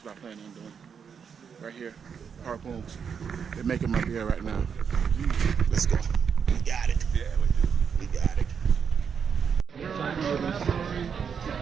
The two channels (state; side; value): quieter; left; 6.8 dB